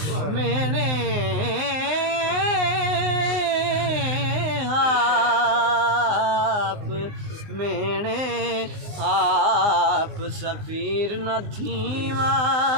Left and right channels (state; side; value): late; left; 19 ms